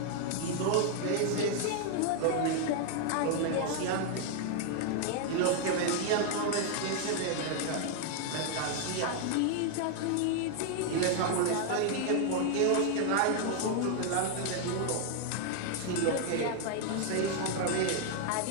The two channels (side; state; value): both; different; correlation 0.00